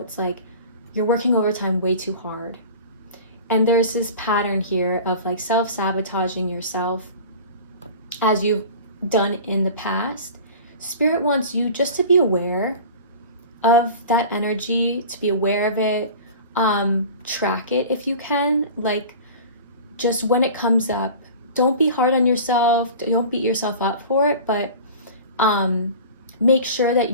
like you're working overtime way too hard. And there's this pattern here of like self-sabotaging yourself as you've done in the past. Spirit wants you just to be aware of that energy, to be aware of it, track it if you can, like just when it comes up, don't be hard on yourself, don't beat yourself up for it, but make sure that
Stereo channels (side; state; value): both; inverted; correlation -0.38